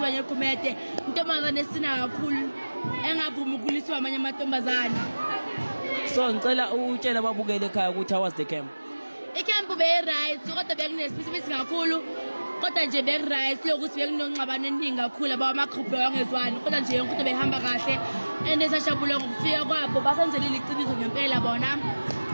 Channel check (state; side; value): inverted; both; correlation -1.00